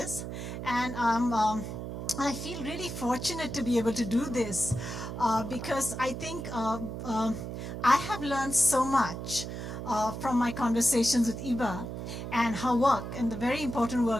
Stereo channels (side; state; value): right; noise; hum, 6 dB below the sound